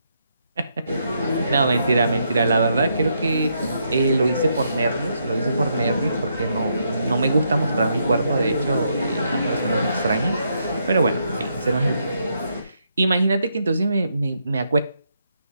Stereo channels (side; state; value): both; inverted; correlation -0.78